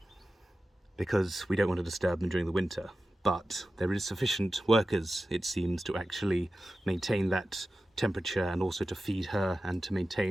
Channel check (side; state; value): both; normal; correlation 0.94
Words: because we don't want to disturb them during the winter, but there is sufficient workers, it seems, to actually maintain that temperature and also to feed her and to